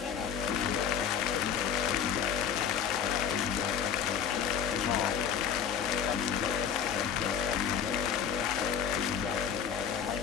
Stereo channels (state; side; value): quieter; right; 7.8 dB